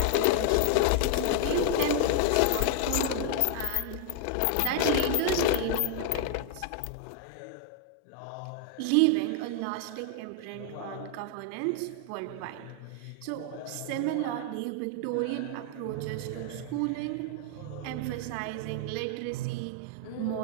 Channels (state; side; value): different; both; correlation 0.00